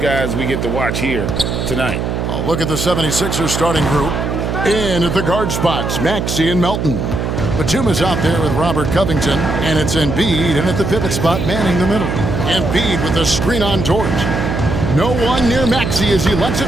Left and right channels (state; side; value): noise; right; hum, 2 dB below the sound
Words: we get to watch here tonight. A look at the 76ers starting group. In at the guard spots, Maxey and Melton. Batuma's out there with Robert Covington, and it's Embiid in at the pivot spot, manning the middle. Embiid with the screen on George. No one near Maxey as he lets it